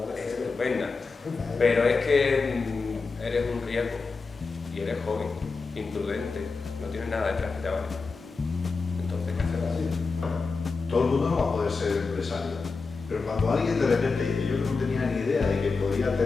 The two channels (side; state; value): right; quieter; 4.3 dB